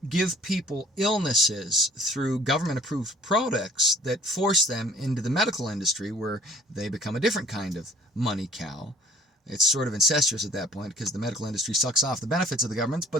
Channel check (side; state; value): both; normal; correlation 0.54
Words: give people illnesses through government-approved products that force them into the medical industry where they become a different kind of money cow. It's sort of incestuous at that point because the medical industry sucks off the benefits of the government,